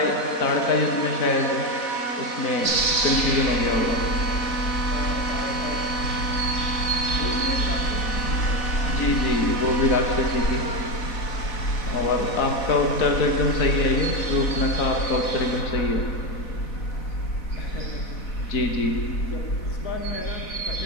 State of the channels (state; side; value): late; right; 4.0 ms